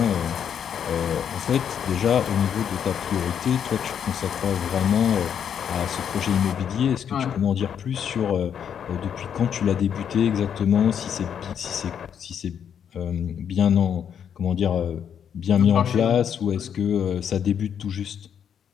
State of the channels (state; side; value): quieter; right; 8.3 dB